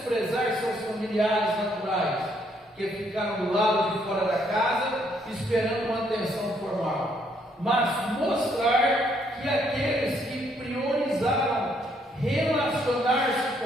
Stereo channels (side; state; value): both; normal; correlation 0.70